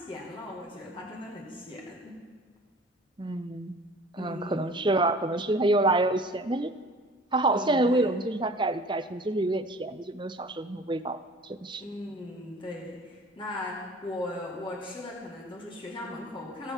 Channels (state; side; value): normal; both; correlation 0.46